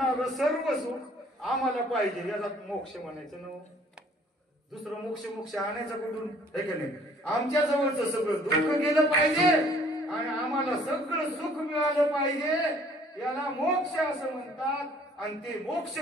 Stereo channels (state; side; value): normal; both; correlation 0.57